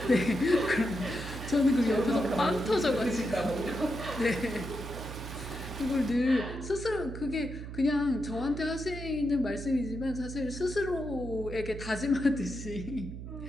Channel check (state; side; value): noise; right; hum, 9 dB below the sound